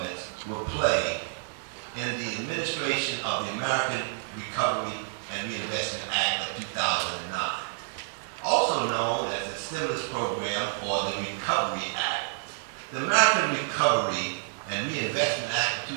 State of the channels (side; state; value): left; silent; digital silence